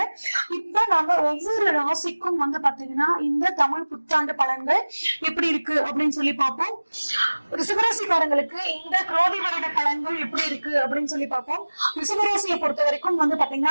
இப்ப நம்ம ஒவ்வொரு ராசிக்கும் வந்து பாத்தீங்கன்னா இந்த தமிழ் புத்தாண்டு பலன்கள் எப்படி இருக்கு அப்படின்னு சொல்லி பார்ப்போம். ரிஷபராசிக்காரங்களுக்கு இந்த குரோதி வருட பலன்கள் எப்படி இருக்கு அப்படின்னு சொல்லி பார்ப்போம். ரிஷபராசியை பொறுத்த வரைக்கும் வந்து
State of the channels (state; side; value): inverted; both; correlation -1.00